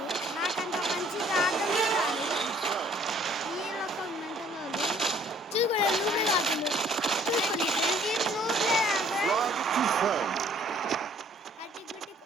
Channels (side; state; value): both; normal; correlation 0.59